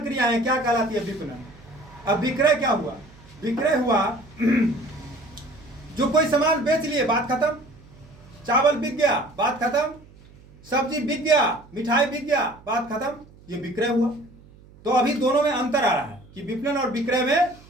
क्रियाएं क्या कहलाती है? विपणन। अब विक्रय क्या हुआ? विक्रय हुआ जो कोई सामान बेच लिए, बात खत्म। चावल बिक गया, बात खत्म। सब्जी बिक गया, मिठाई बिक गया, बात खत्म। ये विक्रय हुआ। तो अभी दोनों में अंतर आ रहा है कि विपणन और विक्रय में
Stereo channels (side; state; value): right; noise; hum, 24 dB below the sound